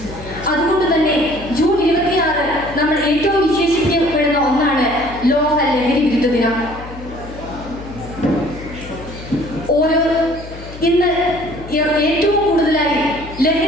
അതുകൊണ്ട് തന്നെ ജൂൺ 26 നമ്മൾ ഏറ്റവും വിശേഷിക്കപ്പെടുന്ന ഒന്നാണ് ലോക ലഹരി വിരുദ്ധ ദിനം. ഇന്ന് ഏറ്റവും കൂടുതലായി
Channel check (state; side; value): noise; left; hum, 14 dB below the sound